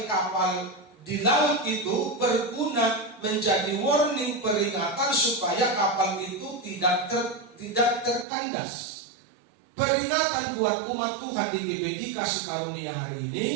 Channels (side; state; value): left; drops out; at 8.2 s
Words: kapal di laut itu berguna menjadi warning, peringatan supaya kapal itu tidak terkandas. Peringatan buat umat Tuhan di GBI Kasih Karunia hari ini